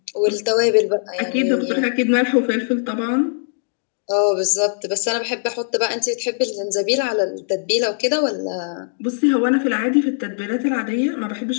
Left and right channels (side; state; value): right; silent; digital silence